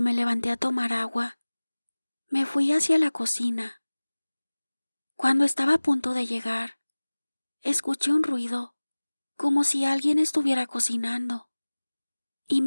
me levanté a tomar agua, me fui hacia la cocina. Cuando estaba a punto de llegar, escuché un ruido, como si alguien estuviera cocinando, y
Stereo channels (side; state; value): both; inverted; correlation -1.00